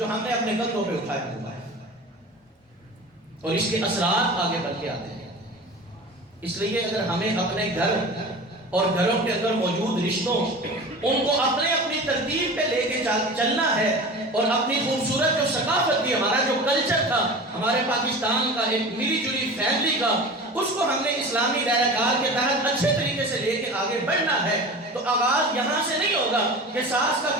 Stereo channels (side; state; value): both; normal; correlation 0.34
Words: ہم نے اپنے کندھوں پہ اٹھایا ہوا ہے، اور اس کے اثرات آگے بڑھ کے آتے ہیں۔ اس لیے اگر ہمیں اپنے گھر اور گھروں کے اندر موجود رشتوں ان کو اپنے اپنی ترتیب پہ لے کے چلنا ہے، اور اپنی خوبصورت جو ثقافت تھی، ہمارا جو کلچر تھا ہمارے پاکستان کا، ایک ملی جلی فیملی کا، اس کو ہم نے اسلامی دائرہ کار کے تحت اچھے طریقے سے لے کے آگے بڑھنا ہے، تو آغاز یہاں سے نہیں ہوگا کہ ساس کا